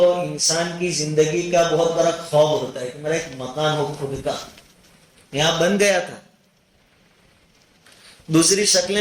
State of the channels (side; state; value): both; identical; correlation 1.00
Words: انسان کی زندگی کا بہت بڑا خواب ہوتا ہے کہ میرا ایک مکان ہو خود کا. یہاں بن گیا تھا. دوسری شکلیں